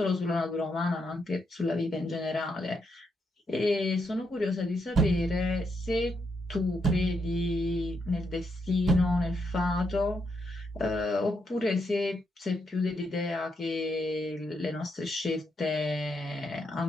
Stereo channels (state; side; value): normal; both; correlation 0.79